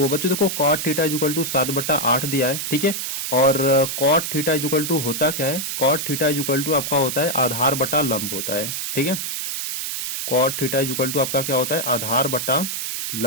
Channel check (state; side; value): noise; right; hiss, 3 dB below the sound